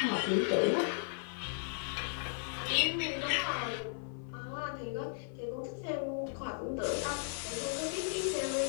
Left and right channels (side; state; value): right; silent; 54 dB below the other